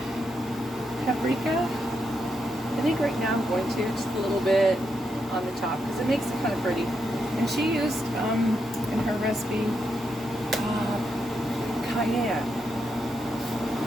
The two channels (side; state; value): both; normal; correlation 0.82